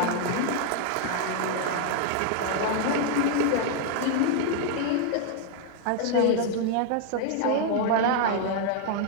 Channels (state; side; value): different; both; correlation 0.00